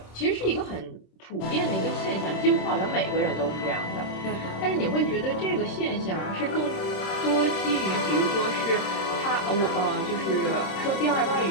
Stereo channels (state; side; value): late; right; 26 ms